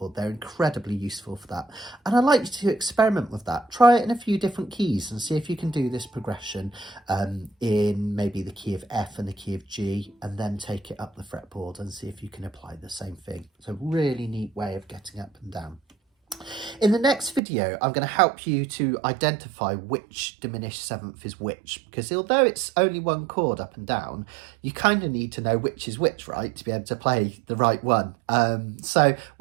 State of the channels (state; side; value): drops out; left; at 17.4 s